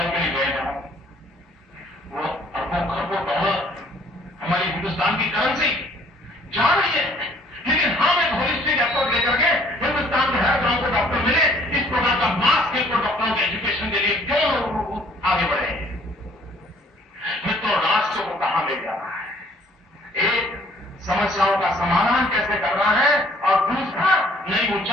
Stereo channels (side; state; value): both; normal; correlation 0.59